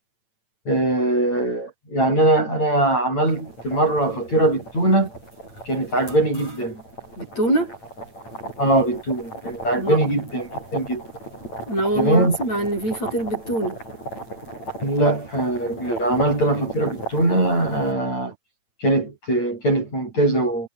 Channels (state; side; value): late; right; 8.9 ms